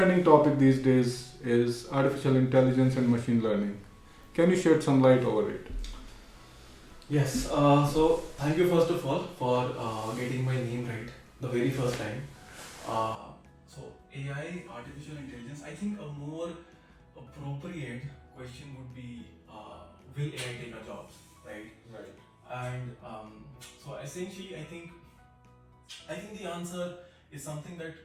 topic these days is artificial intelligence and machine learning. Can you shed some light over it? Yes, so thank you first of all for getting my name right the very first time. So AI, artificial intelligence, I think a more appropriate question would be, will AI take our jobs, right? Right. And so essentially, I think the answer is something that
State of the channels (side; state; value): both; identical; correlation 1.00